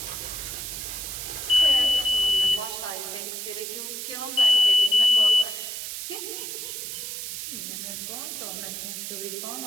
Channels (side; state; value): right; noise; hiss, 6 dB below the sound